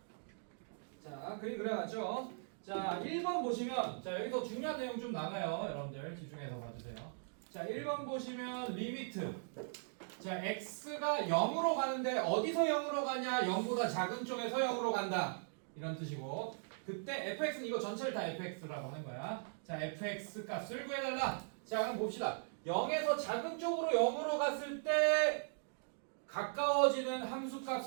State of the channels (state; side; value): silent; left; digital silence